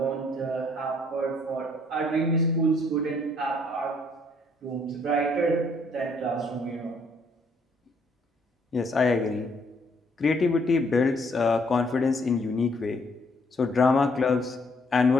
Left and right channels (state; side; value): normal; both; correlation 0.66